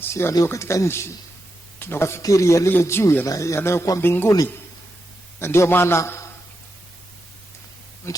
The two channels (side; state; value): both; normal; correlation 0.86